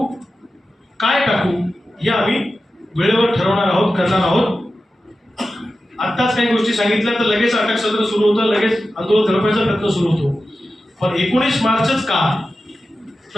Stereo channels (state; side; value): normal; both; correlation 0.93